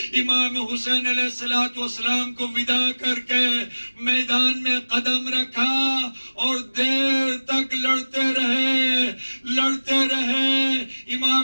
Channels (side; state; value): both; inverted; correlation -1.00